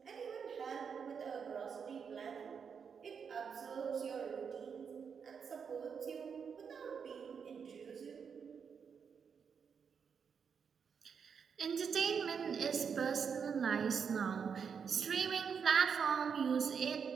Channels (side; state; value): left; quieter; 6.6 dB